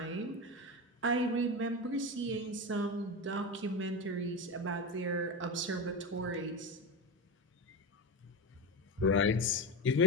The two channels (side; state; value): both; normal; correlation 0.19